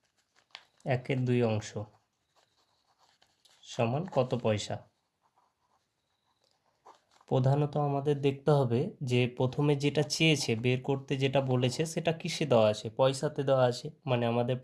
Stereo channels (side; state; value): both; identical; correlation 1.00